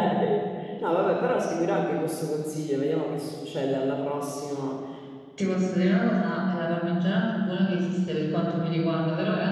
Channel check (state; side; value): identical; both; correlation 1.00